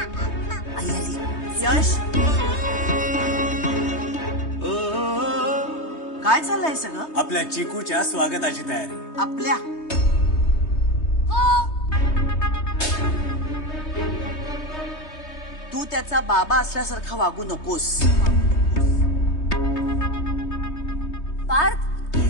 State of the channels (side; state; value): right; late; 3.2 ms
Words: आई आली. यश, काय चाललंय सगळं? आपल्या चिकूच्या स्वागताची तयारी. आपल्या तू त्याचा बाबा असल्यासारखा वागू नकोस. Parth,